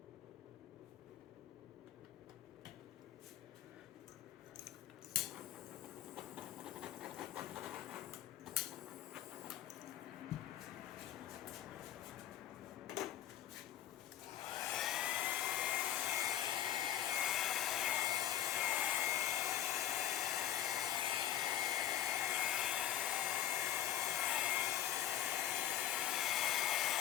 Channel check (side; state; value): right; quieter; 11.9 dB